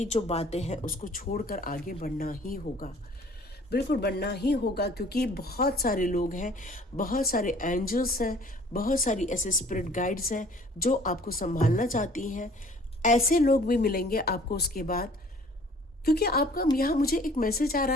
जो बातें हैं उसको छोड़कर आगे बढ़ना ही होगा। बिल्कुल बढ़ना ही होगा क्योंकि बहुत सारे लोग हैं, बहुत सारे एंजल्स हैं, बहुत सारी ऐसे स्पिरिट गाइड्स हैं जो आपको संभालना चाहती हैं। ऐसे लोग भी मिलेंगे आपको उसके बाद, क्योंकि आपका यहाँ मुझे एक मैसेज आ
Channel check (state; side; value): normal; both; correlation 0.53